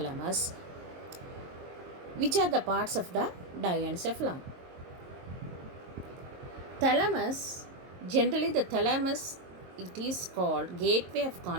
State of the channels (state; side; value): late; left; 22 ms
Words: which are the parts of the diencephalon. Thalamus, generally the thalamus, it is called gateway of